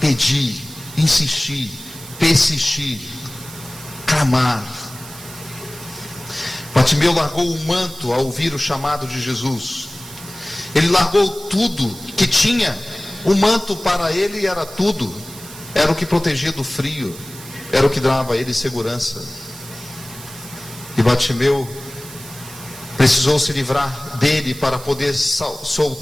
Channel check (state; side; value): noise; right; hiss, 16 dB below the sound